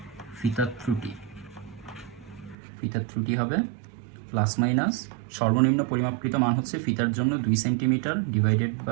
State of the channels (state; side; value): drops out; left; at 2.6 s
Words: ফিতার ত্রুটি হবে প্লাস মাইনাস সর্বনিম্ন পরিমাপকৃত মান হচ্ছে ফিতার জন্য 2 সেন্টিমিটার ডিভাইডেড